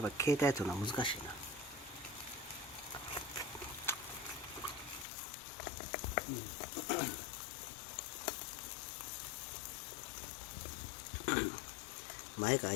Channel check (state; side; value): drops out; right; at 5.1 s